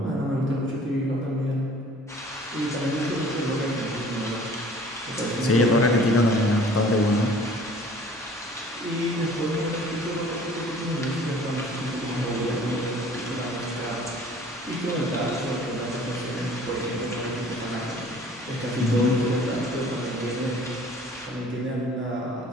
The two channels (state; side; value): normal; both; correlation 0.51